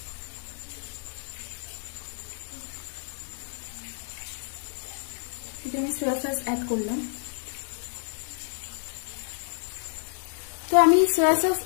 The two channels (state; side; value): silent; right; digital silence